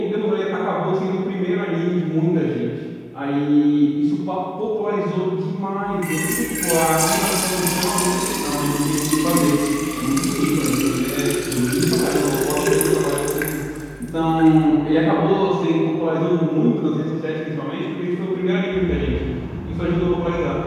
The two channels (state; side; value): identical; both; correlation 1.00